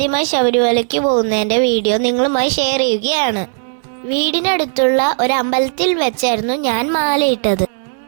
ശബരിമലയ്ക്ക് പോകുന്നതിൻ്റെ വീഡിയോ നിങ്ങളുമായി ഷെയർ ചെയ്യുകയാണ്. വീടിനടുത്തുള്ള ഒരു അമ്പലത്തിൽ വെച്ചായിരുന്നു ഞാൻ മാലയിട്ടത്.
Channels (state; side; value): silent; left; 59 dB below the other